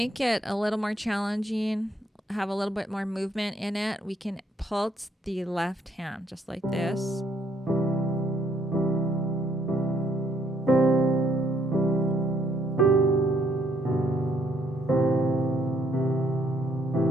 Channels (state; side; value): normal; both; correlation 0.69